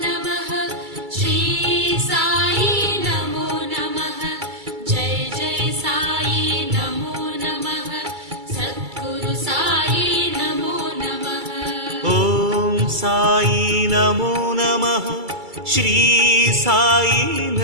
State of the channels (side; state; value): left; late; 2.3 ms